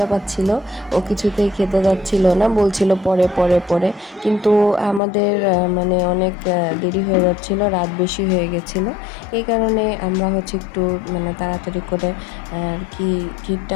পাচ্ছিল, ও কিছুতেই খেতে যাচ্ছিল না, বলছিল পরে পরে পরে। কিন্তু আমাদের অনেক দেরি হয়ে যাচ্ছিল, রাত বেশি হয়ে গেছিলো। এই কারণে আমরা একটু তাড়াতাড়ি করে আর কি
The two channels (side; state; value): right; drops out; at 5.0 s